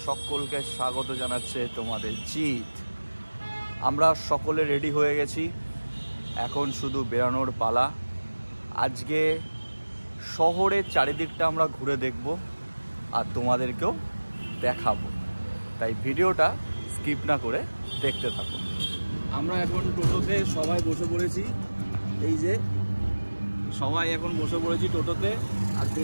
সকলকে স্বাগত জানাচ্ছে তোমাদের জিত। আমরা সকলে রেডি হয়ে গেছি, এখন শুধু বেরানোর পালা। আজকে শহরের চারিদিকটা আমরা ঘুরে দেখব আর তোমাদেরকেও দেখাবো, তাই ভিডিওটা স্কিপ না করে দেখতে থাকো। আমরা এখন টোটোতে সবাই বসে পড়েছি, এই যে সবাই এখন বসে পড়েছি টোটোতে। আর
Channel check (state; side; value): inverted; both; correlation -1.00